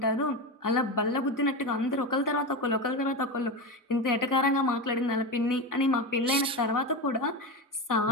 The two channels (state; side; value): normal; both; correlation 0.19